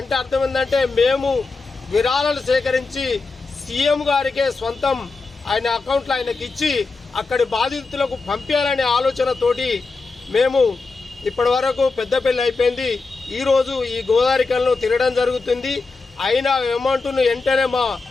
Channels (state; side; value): quieter; right; 4.0 dB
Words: అర్థం ఏంటంటే మేము విరాళాలు సేకరించి సీఎం గారికే సొంతం ఆయన అకౌంట్లో ఆయనకి ఇచ్చి అక్కడి బాధితులకు పంపించాలనే ఆలోచనతోటి మేము ఇప్పటి వరకు పెద్దపల్లి అయిపోయింది. ఈరోజు ఈ గోదావరికల్లో తిరగడం జరుగుతుంది. అయినా అమౌంట్ను వెంటనే మా